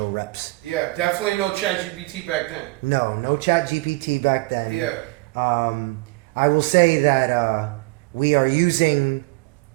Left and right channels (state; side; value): quieter; left; 23.6 dB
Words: reps. Yeah, definitely no ChatGPT back then. No chat GPT back then. Yeah. I will say that we are using